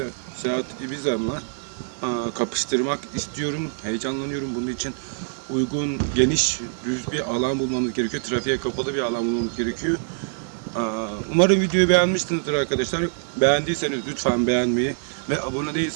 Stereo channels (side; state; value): left; silent; 62 dB below the other